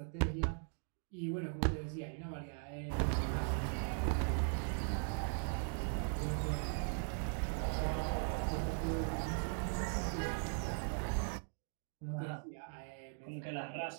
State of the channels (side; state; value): left; silent; 51 dB below the other